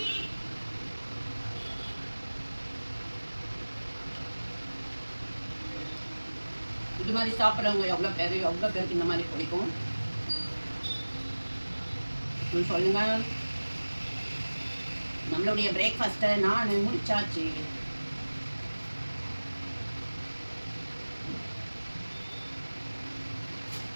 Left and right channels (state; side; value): inverted; both; correlation -1.00